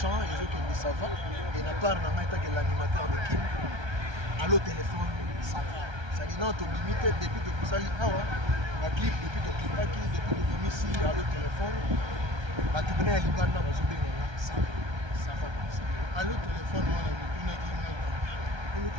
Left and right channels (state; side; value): late; left; 1.3 ms